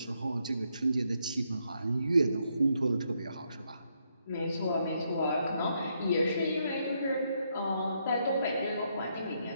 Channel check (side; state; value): both; inverted; correlation -0.77